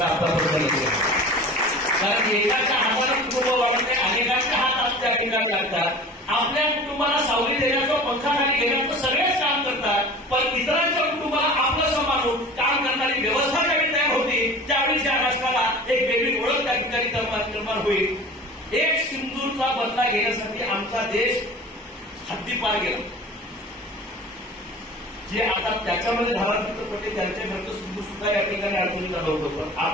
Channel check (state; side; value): normal; both; correlation 0.39